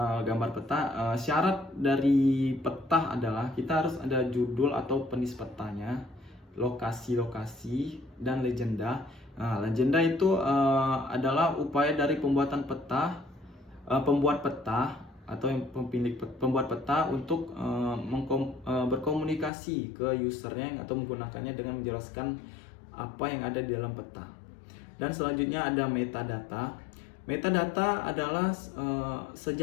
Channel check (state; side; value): drops out; right; at 19.5 s